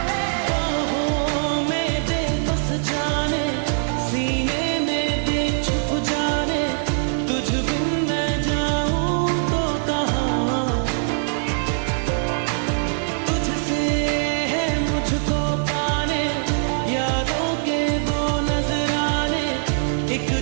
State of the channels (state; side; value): silent; left; digital silence